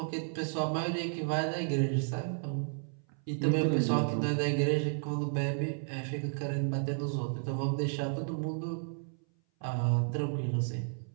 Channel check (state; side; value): silent; left; 56 dB below the other